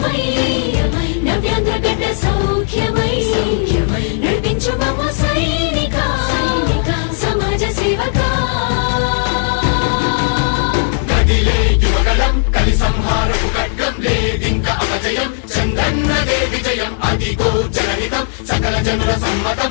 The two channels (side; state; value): right; silent; digital silence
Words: నవ్యాంధ్ర గడ్డ సౌఖ్యమై నడిపించు మమ్మ సైనిక సమాజ సేవక. కదిలే యువగళం కలి సంహారపు ఖడ్గం లేదింక అపజయం. చంద్రన్నదే విజయం అదిగో జనహితం సకల జనుల సమ్మతం.